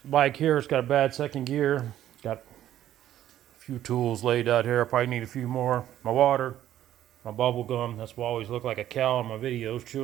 bike here. It's got a bad second gear. Got a few tools laid out here. I probably need a few more. My water, my bubble gum. That's why I always look like a cow in my videos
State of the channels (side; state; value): left; quieter; 12.1 dB